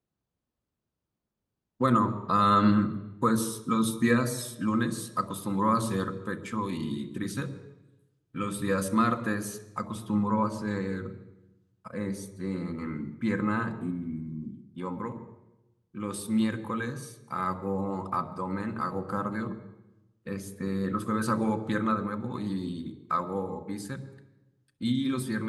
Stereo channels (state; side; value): identical; both; correlation 1.00